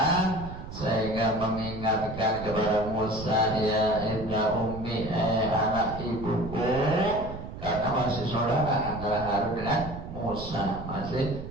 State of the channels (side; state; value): right; noise; rumble, 10 dB below the sound